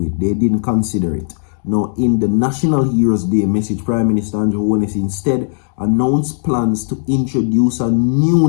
They didn't consider it. Now, in the National Heroes Day message, Prime Minister Andrew Holness instead announced plans to introduce a new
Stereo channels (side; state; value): right; silent; digital silence